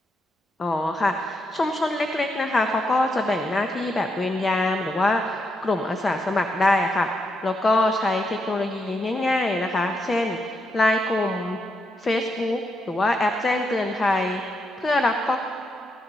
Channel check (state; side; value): normal; both; correlation 0.81